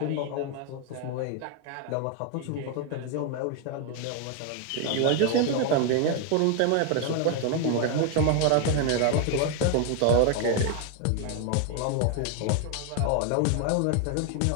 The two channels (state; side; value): different; both; correlation 0.01